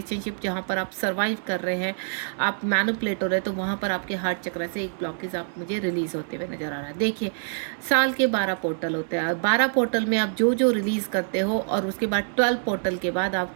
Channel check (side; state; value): left; silent; 61 dB below the other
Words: जहाँ पर आप सर्वाइव कर रहे हैं, आप मैनिपुलेट हो रहे हैं, तो वहाँ पर आपके हार्ट चक्र से एक ब्लॉकेज आप मुझे रिलीज होते हुए नजर आ रहा है। देखिए, साल के 12 पोर्टल होते हैं, 12 पोर्टल में आप जो जो रिलीज करते हो, और उसके बाद 12 पोर्टल के बाद